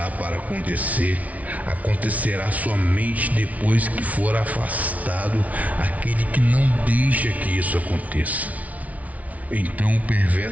para acontecer acontecerá somente depois que for afastado aquele que não deixa que isso aconteça. Então o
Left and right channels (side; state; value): left; late; 0.069 ms